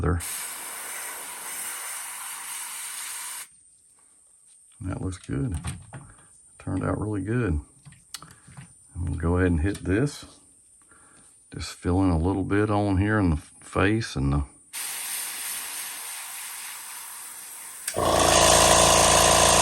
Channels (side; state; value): both; identical; correlation 1.00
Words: That looks good. Turned out really good. And we'll go ahead and hit this. Just fill in a little bit on here in the face and the